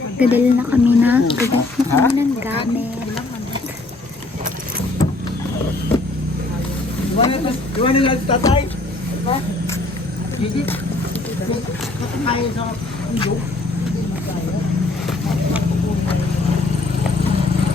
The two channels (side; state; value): right; quieter; 3.1 dB